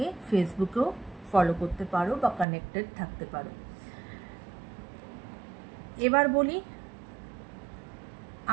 ফেসবুকেও ফলো করতে পারো বা কানেক্টেড থাকতে পারো। এবার বলি,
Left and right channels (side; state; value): left; drops out; at 2.5 s